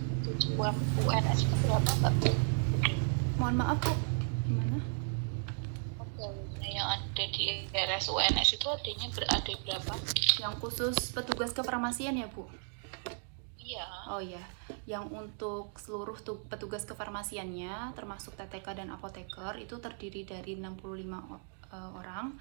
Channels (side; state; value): left; silent; 55 dB below the other